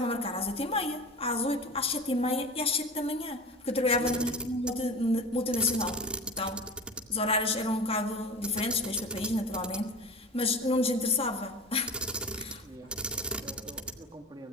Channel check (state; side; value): normal; both; correlation 0.32